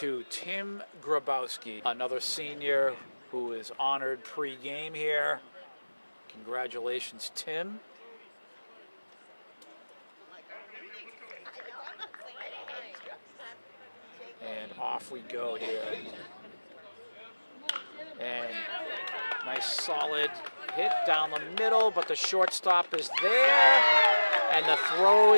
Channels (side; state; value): both; inverted; correlation -1.00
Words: Tim Grabowski, another senior who is honored pre-game here. Congratulations, Tim. And off we go here. And nice solid hit down the middle, but the shortstop is there. And the throw